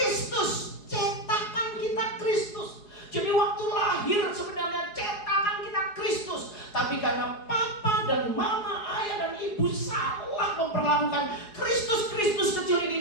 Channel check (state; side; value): late; right; 4.8 ms